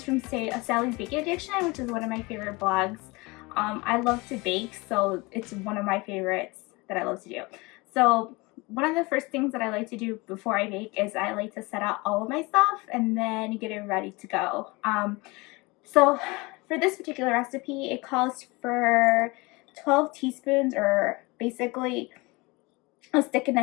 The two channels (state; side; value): quieter; right; 24.8 dB